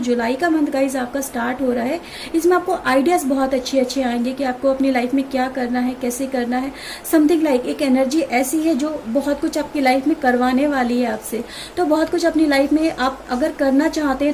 जुलाई का मंथ गाइज आपका स्टार्ट हो रहा है, इसमें आपको आइडियाज बहुत अच्छे अच्छे आएंगे कि आपको अपनी लाइफ में क्या करना है, कैसे करना है। समथिंग लाइक एक एनर्जी ऐसी है जो बहुत कुछ आपकी लाइफ में करवाने वाली है आपसे। तो बहुत कुछ अपनी लाइफ में आप अगर करना चाहते हैं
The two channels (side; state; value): both; identical; correlation 1.00